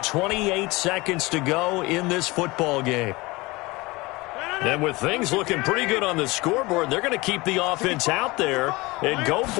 28 seconds to go in this football game. And with things looking pretty good on the scoreboard, they're going to keep the offense out there and go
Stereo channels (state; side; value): quieter; right; 22.7 dB